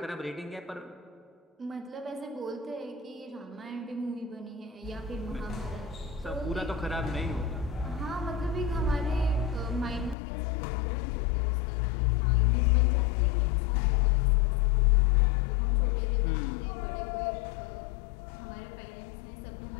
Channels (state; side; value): drops out; right; at 10.2 s